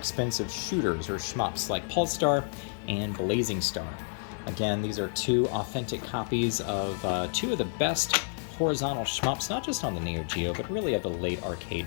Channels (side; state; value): right; silent; 58 dB below the other